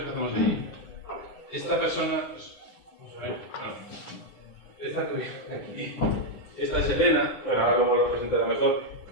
que hacemos allí. Esta persona, vamos a ver, esta que viene aquí, esta es Elena, bueno, ahora luego lo presentaré mejor,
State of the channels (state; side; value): late; right; 9.5 ms